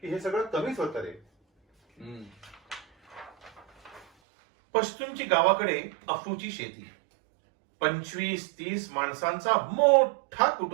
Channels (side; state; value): left; drops out; at 4.0 s